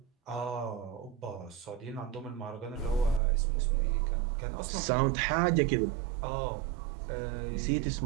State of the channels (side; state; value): left; drops out; at 3.2 s